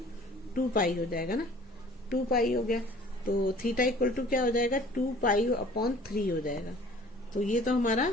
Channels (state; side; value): normal; both; correlation 0.50